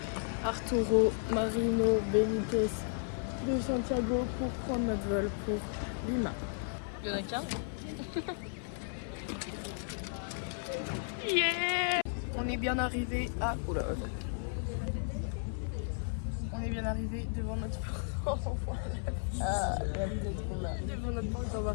Arturo Marino Benítez de Santiago pour prendre notre vol pour Lima. Il y en a qu'un. Yeah! On est bien arrivé à... Oula, attends. On est bien arrivé devant notre porte. Devant notre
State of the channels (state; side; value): silent; right; 55 dB below the other